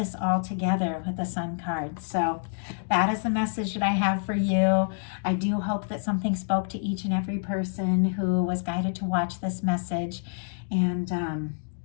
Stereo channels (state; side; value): silent; right; digital silence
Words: all together with the Sun card. So that is the message that I have for you. I do hope that something spoke to each and every person who was guided to watch this message. And